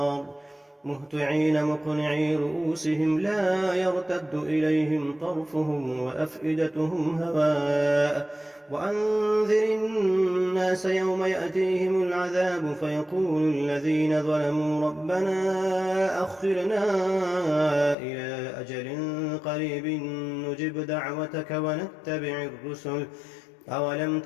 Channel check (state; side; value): drops out; right; at 17.9 s